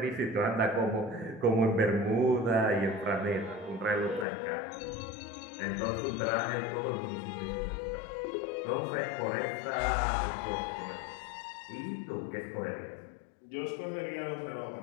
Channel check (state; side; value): drops out; right; at 4.2 s